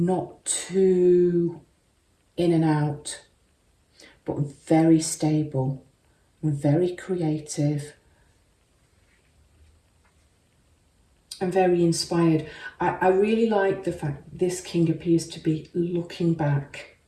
too in and out, but very stable and very creative and very inspired. I really like the fact this king appears to be looking back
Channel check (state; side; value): identical; both; correlation 1.00